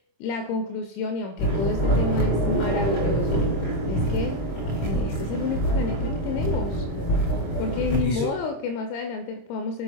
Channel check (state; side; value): late; right; 26 ms